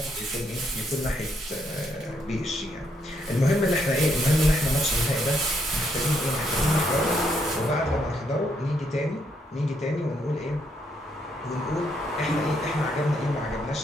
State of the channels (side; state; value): both; normal; correlation 0.74